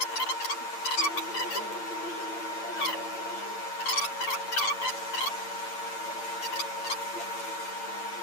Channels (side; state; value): right; late; 8.7 ms